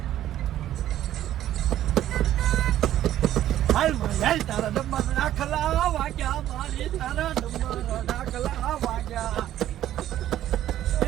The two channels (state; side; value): quieter; left; 12.5 dB